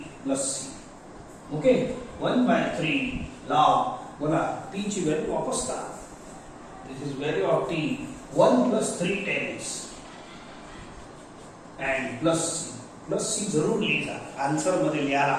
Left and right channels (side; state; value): both; identical; correlation 1.00